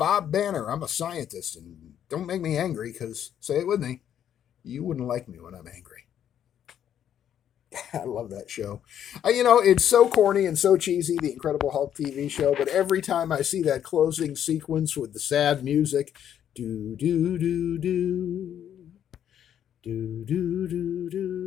Banner. I'm a scientist. And don't make me angry because, say it with me, you wouldn't like me when I'm angry. I love that show. It's so corny and so cheesy, the Incredible Hulk TV show, but every time I see that closing sequence with the sad music, do do do do do do do do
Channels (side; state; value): right; quieter; 9.8 dB